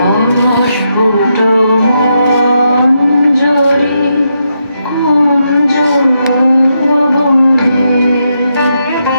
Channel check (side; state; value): both; inverted; correlation -0.82